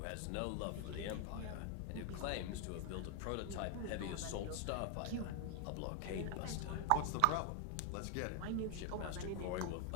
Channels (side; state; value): both; different; correlation 0.00